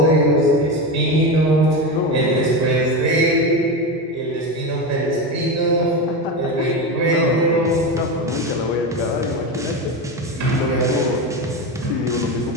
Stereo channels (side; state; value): both; normal; correlation 0.19